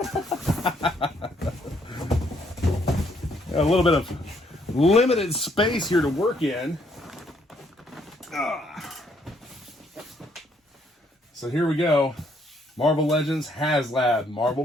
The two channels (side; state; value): both; normal; correlation 0.69